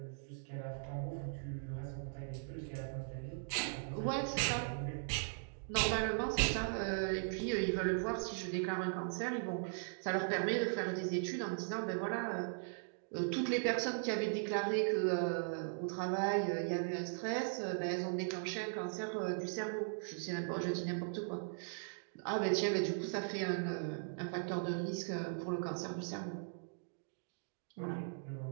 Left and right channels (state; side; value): silent; left; digital silence